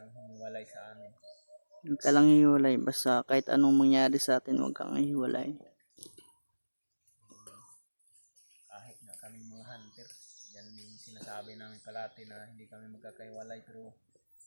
humiwalay sa amin. Huwag ka lang hiwalay. Basta kahit anong mangyari sa atin, huwag kang hiwalay. Kahit na kami mga hunter yan yung sinasabi namin palati na hindi kami magkakaiwalay pero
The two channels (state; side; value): inverted; both; correlation -1.00